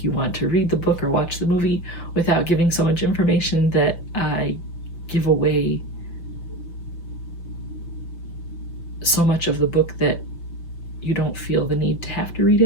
you want to read the book or watch the movie without giving so much information that I give away so much of the book that you don't feel the need to have to read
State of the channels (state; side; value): late; right; 5.9 ms